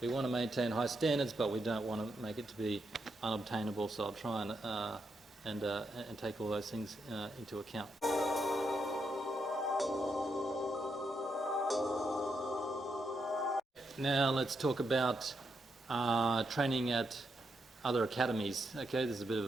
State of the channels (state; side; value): normal; both; correlation 0.81